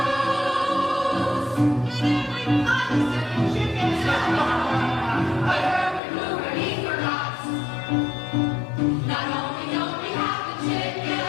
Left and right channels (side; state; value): right; drops out; at 6.0 s